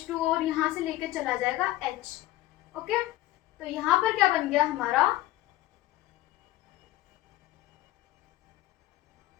और यहाँ से लेके चला जाएगा H। ओके, तो यहाँ पर क्या बन गया हमारा,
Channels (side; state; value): right; quieter; 16.3 dB